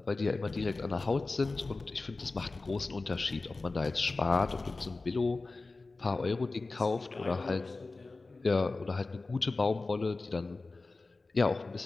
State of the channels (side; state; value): right; quieter; 3.5 dB